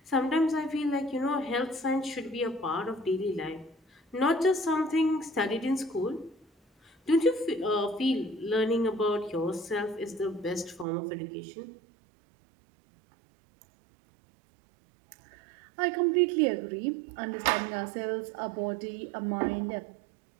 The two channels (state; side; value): drops out; left; at 10.9 s